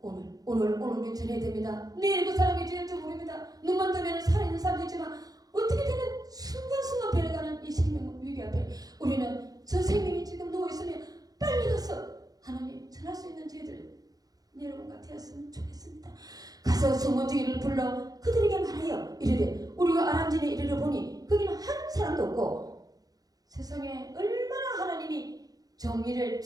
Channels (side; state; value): left; late; 0.18 ms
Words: 오늘 우리 전해야 됩니다. 내일 그 사람이 될지 모릅니다. 눈만 뜨면 살아있는 사람도 있지만 어떻게 되는 순간순간 변해가는 이 생명 위기 앞에 우리는 저 생명이 지금 누워있으면 빨리 가서 하나님 전할 수 있는 저희들 여러분과 되었으면 좋겠습니다. 가서 소문지기를 불러 그들에게 말하여 이르되 우리가 아람진에 이르러 보니 거기는 한 사람도 없고 세상에 얼마나 하나님이 정의를